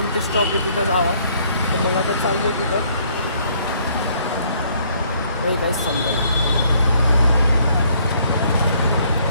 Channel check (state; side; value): inverted; both; correlation -0.65